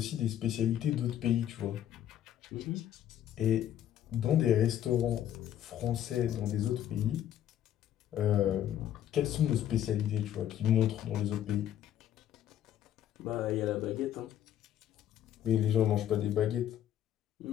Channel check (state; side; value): quieter; right; 11.1 dB